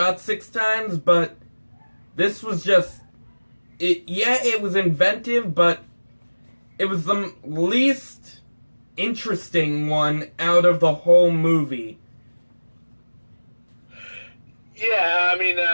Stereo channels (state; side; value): inverted; both; correlation -1.00